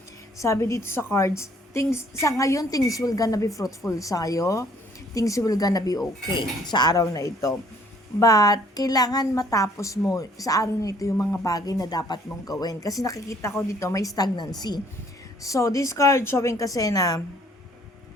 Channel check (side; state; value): both; normal; correlation 0.60